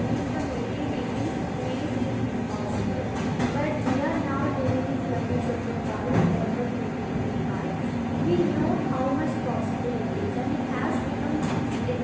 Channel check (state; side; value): identical; both; correlation 1.00